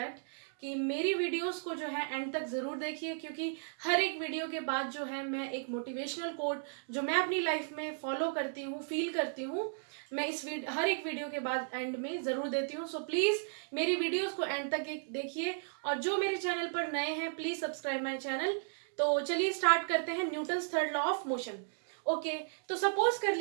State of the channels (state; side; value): silent; left; digital silence